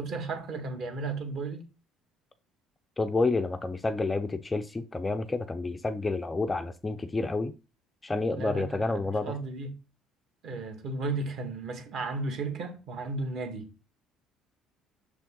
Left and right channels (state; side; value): normal; both; correlation 0.74